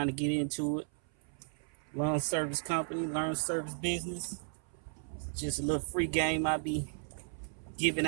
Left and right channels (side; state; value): left; silent; 55 dB below the other